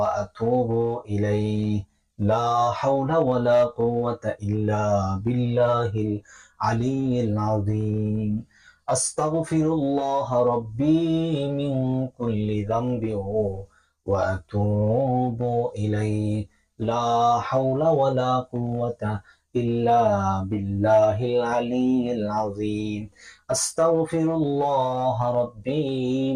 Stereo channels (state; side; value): identical; both; correlation 1.00